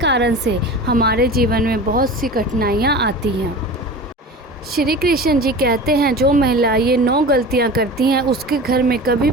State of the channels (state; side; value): normal; both; correlation 0.34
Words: से हमारे जीवन में बहुत सी कठिनाइयां आती हैं। श्री कृष्ण जी कहते हैं जो महिला ये 9 गलतियां करती हैं उसके घर में कभी